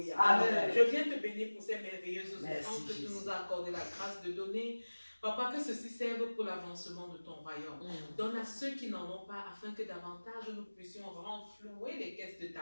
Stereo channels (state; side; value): inverted; both; correlation -1.00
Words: Amen. Je viens te bénir pour ces merveilleuses Merci, offrandes que tu Jésus. nous as accordé la grâce de donner. Papa, que ceci serve pour l'avancement de ton royaume. Donne à ceux qui n'en ont pas, afin que davantage nous puissions renflouer les caisses de ta